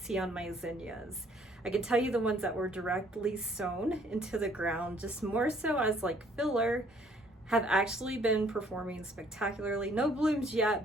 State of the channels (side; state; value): both; normal; correlation 0.62